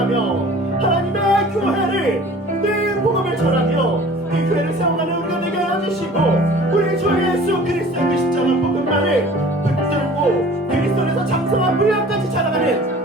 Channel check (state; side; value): normal; both; correlation 0.46